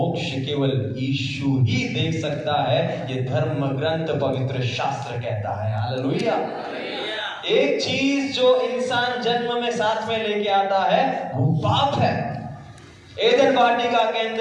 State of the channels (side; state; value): both; identical; correlation 1.00